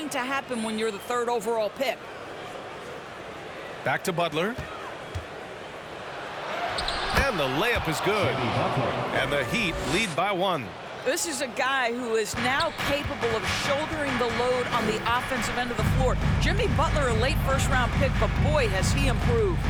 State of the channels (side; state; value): both; identical; correlation 1.00